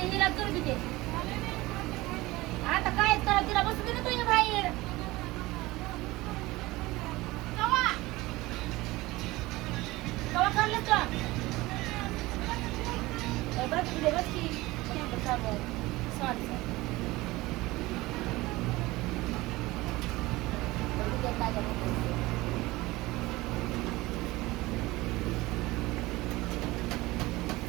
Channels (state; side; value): quieter; left; 19.9 dB